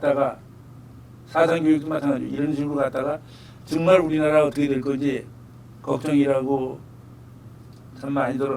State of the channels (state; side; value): identical; both; correlation 1.00